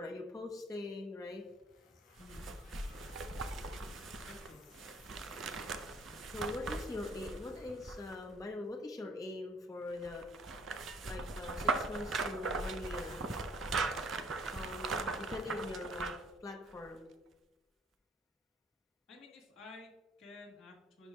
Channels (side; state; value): both; normal; correlation 0.60